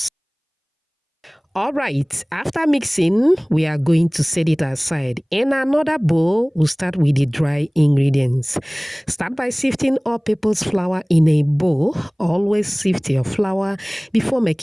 All right, after mixing, we are going to set it aside. In another bowl, we'll start with the dry ingredients. Start by sifting all-purpose flour in a bowl. Always sift your flour before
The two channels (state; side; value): identical; both; correlation 1.00